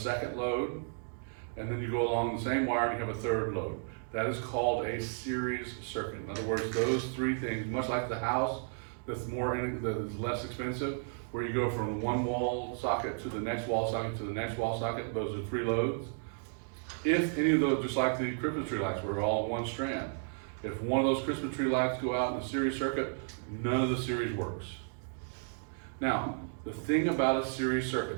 load, and then you go along the same wire and you have a third load. That is called a series circuit. In other words, those 3 things, much like the house that's less expensive, where you go from one wall socket to the next wall socket to the next wall socket, those are 3 loads. If any of those, just like the Christmas tree lights, were all one strand, if one of those Christmas tree lights go out in the series circuit, none of the series works. Now, the thing about a series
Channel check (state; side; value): silent; left; digital silence